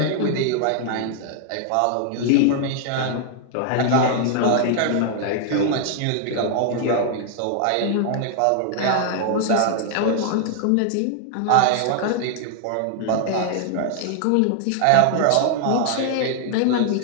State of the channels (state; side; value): different; both; correlation 0.00